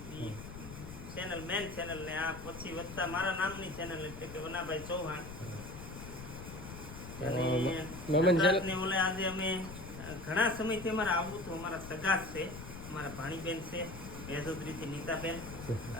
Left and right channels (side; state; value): left; noise; rumble, 11 dB below the sound